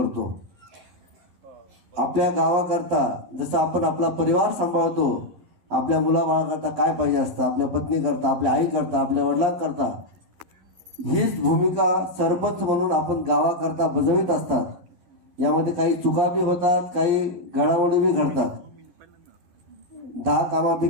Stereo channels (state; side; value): late; left; 11 ms